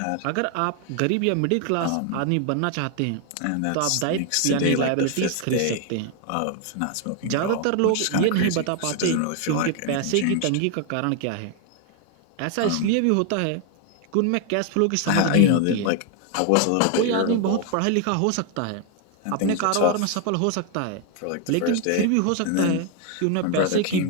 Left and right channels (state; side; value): different; both; correlation 0.01